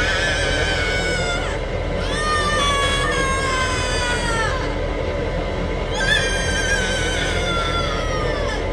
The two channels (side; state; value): both; identical; correlation 1.00